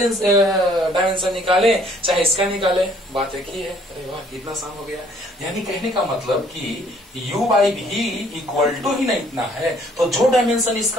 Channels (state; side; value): normal; both; correlation 0.61